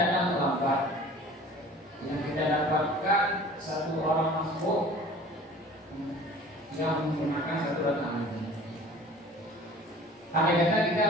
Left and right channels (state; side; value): normal; both; correlation 0.46